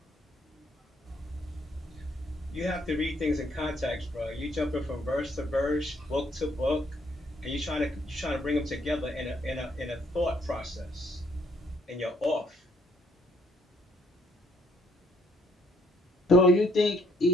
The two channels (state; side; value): normal; both; correlation 0.68